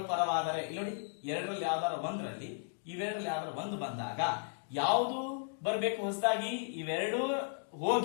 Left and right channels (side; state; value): right; silent; digital silence